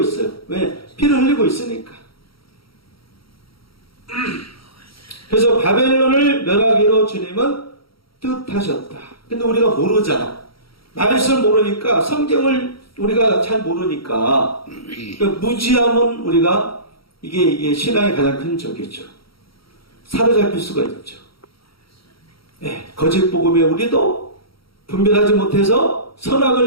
왜? 피를 흘리고 있으니까. 그래서 바벨론을 멸하기로 주님은 뜻하셨다. 근데 우리가 모르잖아. 말씀을 모르니까, 성경을 우리가 잘 모르니까, 그러니까 무지함은 우리가, 이게 신앙의 가장 큰 적이죠. 사로잡힐 수가 있죠. 네, 거짓 복음에 우리도 분별하지 못해서,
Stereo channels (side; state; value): right; late; 0.75 ms